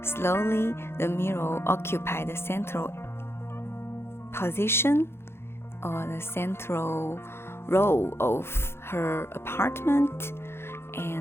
Slowly, the mirror occupied the central position or the central role of her apartment,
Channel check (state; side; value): late; right; 0.12 ms